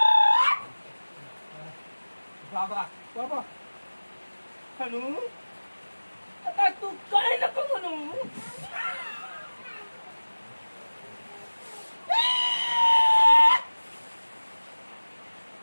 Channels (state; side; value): inverted; both; correlation -1.00